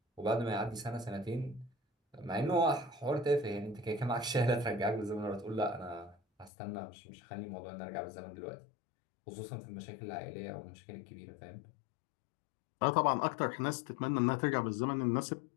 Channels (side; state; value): right; drops out; at 6.5 s